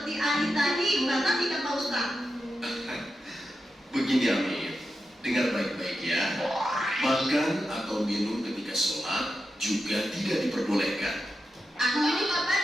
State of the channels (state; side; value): normal; both; correlation 0.89